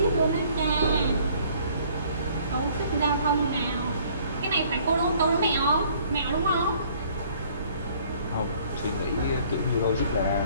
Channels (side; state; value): both; inverted; correlation -0.58